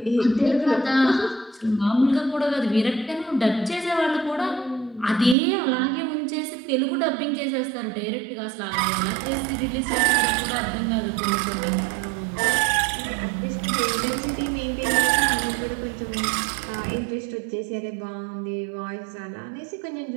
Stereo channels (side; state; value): left; drops out; at 5.4 s